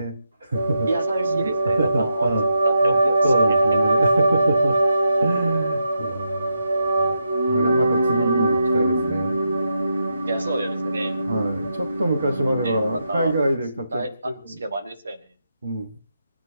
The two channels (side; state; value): both; inverted; correlation -0.84